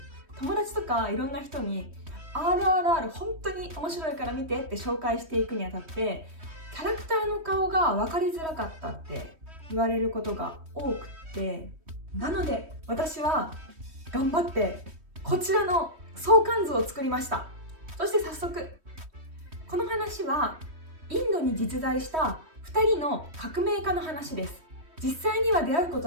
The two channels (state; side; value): late; left; 3.1 ms